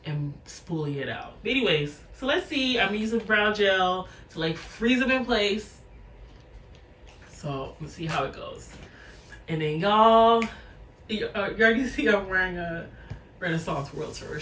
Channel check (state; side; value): identical; both; correlation 1.00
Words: and spoolie it out. But anyways, so let's see. I'm using brow gel to like freeze them in place. So let's see how it goes. And then y'all, you already see I'm wearing a Renaissance World Tour